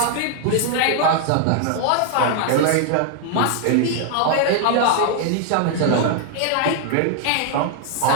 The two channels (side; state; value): both; different; correlation 0.00